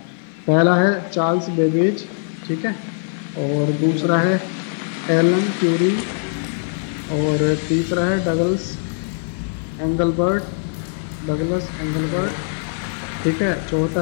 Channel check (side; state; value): right; silent; 61 dB below the other